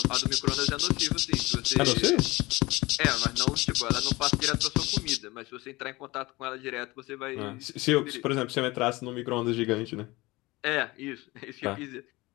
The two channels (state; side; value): quieter; right; 21.5 dB